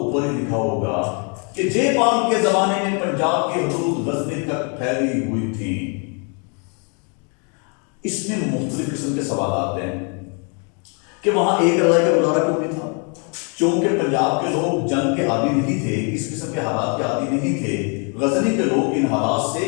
ہی لکھا ہوگا کہ جے پال کے زمانے میں پنجاب کی حدود غزنی تک پھیلی ہوئی تھی۔ اس میں مختلف قسم کے سوالات ہیں کہ وہاں ایک رضائی کا گزارا کیوں نہیں تھا؟ چونکہ پنجاب کے لوگ جنگ کے عادی نہیں تھے، اس قسم کے حالات کے عادی نہیں تھے۔ غزنی کے لوگ ان حالات سے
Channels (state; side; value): quieter; right; 37.2 dB